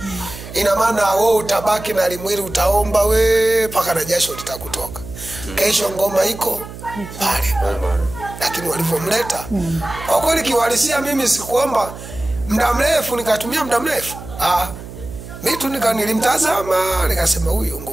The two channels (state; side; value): noise; right; hum, 13 dB below the sound